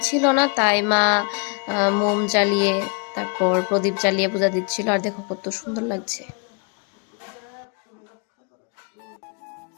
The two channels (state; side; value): quieter; right; 35.5 dB